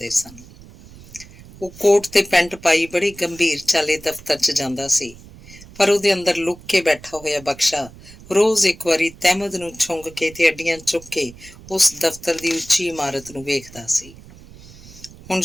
ਸਨ। ਉਹ ਕੋਟ ਤੇ ਪੈਂਟ ਪਾਈ ਬੜੀ ਗੰਭੀਰ ਚਾਲੇ ਦਫ਼ਤਰ 'ਚ ਜਾਂਦਾ ਸੀ, ਪਰ ਉਹਦੇ ਅੰਦਰ ਲੁੱਕ ਕੇ ਬੈਠਾ ਹੋਇਆ ਬਖਸ਼ਾ ਰੋਜ਼ ਇੱਕ ਵਾਰੀ ਤਹਿਮਦ ਨੂੰ ਛੁੰਘ ਕੇ ਤੇ ਅੱਡੀਆਂ ਚੁੱਕ ਕੇ ਉਸ ਦਫ਼ਤਰ ਦੀ ਉੱਚੀ ਇਮਾਰਤ ਨੂੰ ਵੇਖਦਾ ਸੀ। ਹੁਣ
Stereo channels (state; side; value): noise; right; rumble, 20 dB below the sound